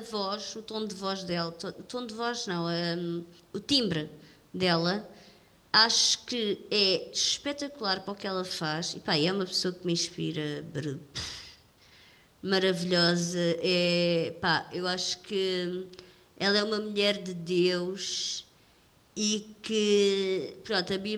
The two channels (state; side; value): identical; both; correlation 1.00